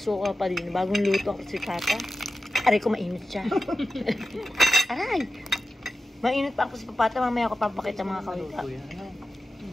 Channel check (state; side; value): normal; both; correlation 0.93